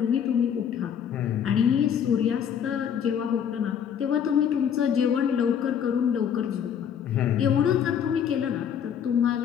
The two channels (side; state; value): right; quieter; 8.3 dB